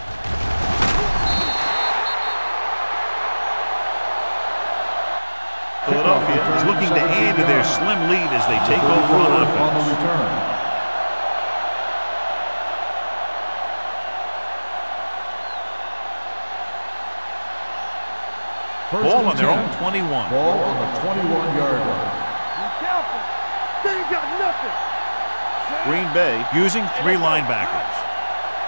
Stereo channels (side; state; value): both; inverted; correlation -1.00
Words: Philadelphia is looking to add to their slim lead as they take over on offense. Return. Ball on their own 21. Ball on the 21-yard line. Be careful. They ain't got nothing. Green Bay using 3 linebackers.